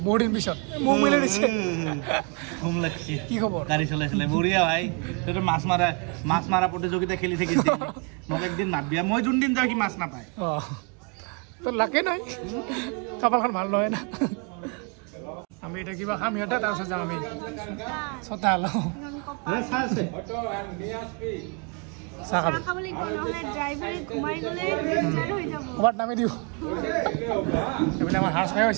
दिन पिछत मुख मिले दिছে घुम লাগছে কি খবৰ গাড়ি চলাইছিলে বঢ়িয়া ভাই তোৰ মাছ মাৰা প্ৰতিযোগিতা খেলি থাকিছিল মোক একদিন মাতবিয়া মই যোন দিন যাও কি মাছ নাপায় তো লাগে নাই কপালখন ভাল নহয় না আমি এটা কিবা খাম ইয়াতে তাৰপিছত যাম আমি চতাল আছে সাকা খাবলে কোন হলে ড্রাইভারে ঘুমাই গলে রেঞ্জার হই যাব ওয়াট নামে দিও এবেলে আমার হার্স ভাই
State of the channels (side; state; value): left; quieter; 34.5 dB